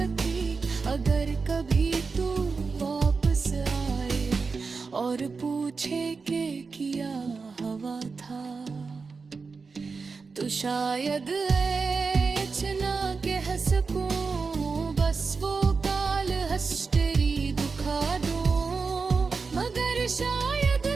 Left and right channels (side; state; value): left; quieter; 4.7 dB